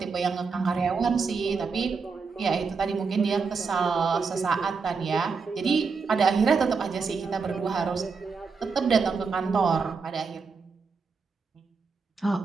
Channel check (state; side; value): quieter; left; 5.0 dB